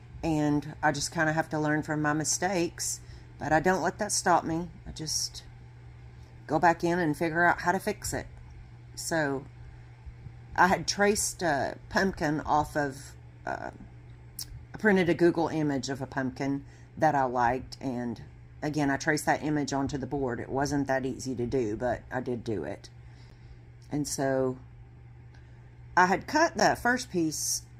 And I just kind of have to learn from my mistakes. But I don't let that stop me. I just go back in and figure out how to fix it. So I had traced a pumpkin off of... I printed a Google image of a pumpkin that I liked, and again, I traced that image onto the board. It wasn't that easy to do, but I did do it. And so I had cut that first piece,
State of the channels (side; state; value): both; identical; correlation 1.00